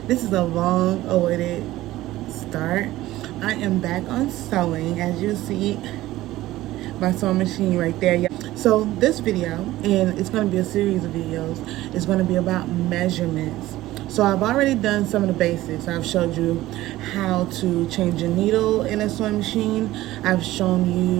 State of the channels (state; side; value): quieter; left; 16.2 dB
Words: this is a long awaited start. I am back on sewing, as you see my sewing machine right there, y'all. So this video, and it's going to be a series of videos, is going to be about measurements. So I've already done some of the basics. I've showed you how to change a needle in a sewing machine. I've shown